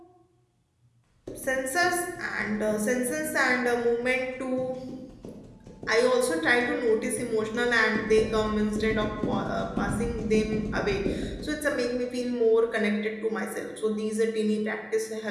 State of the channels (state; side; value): identical; both; correlation 1.00